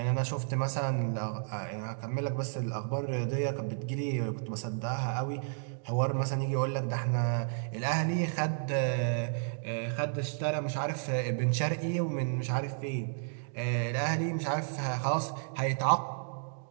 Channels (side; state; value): left; silent; digital silence